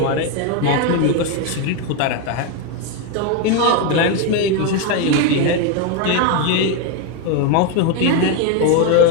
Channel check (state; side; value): different; both; correlation 0.02